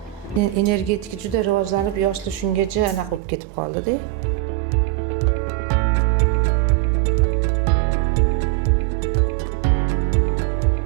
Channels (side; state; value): left; drops out; at 3.2 s